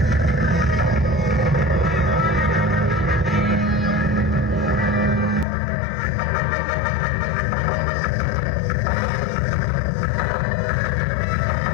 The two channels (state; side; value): drops out; right; at 5.5 s